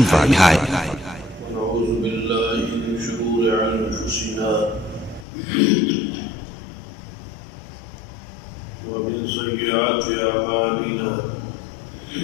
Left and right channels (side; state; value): right; drops out; at 5.2 s